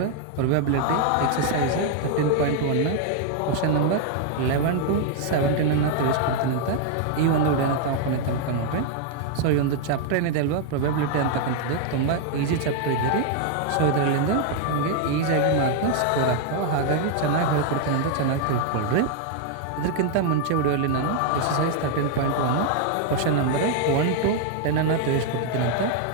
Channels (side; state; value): both; different; correlation 0.00